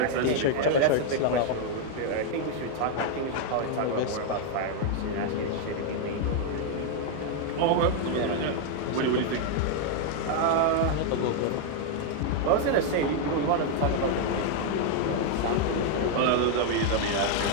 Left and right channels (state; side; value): different; both; correlation 0.00